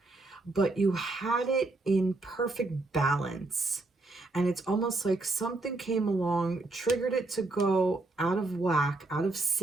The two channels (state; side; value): quieter; left; 3.1 dB